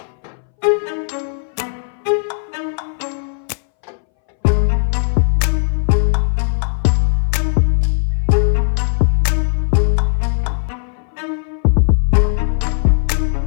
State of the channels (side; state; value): right; silent; 63 dB below the other